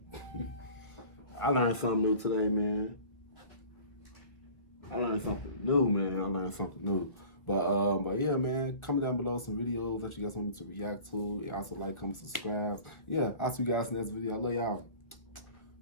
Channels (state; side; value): late; right; 1.7 ms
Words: I learned something new today, man. I learned something new. But yeah, man, comment down below some videos that you guys want me to react to. Also like, comment, subscribe. Yeah, I'll see you guys in the next video. I love y'all.